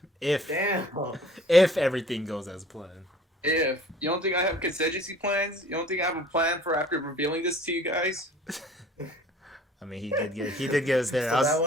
if Damn. if everything goes as planned. If you don't think I have contingency plans, you don't think I have a plan for after revealing this to you guys? I mean, he did get us there. So that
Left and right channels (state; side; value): normal; both; correlation 0.49